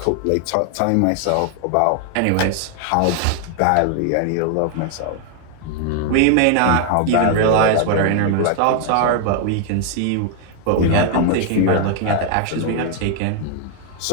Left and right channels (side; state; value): both; different; correlation 0.00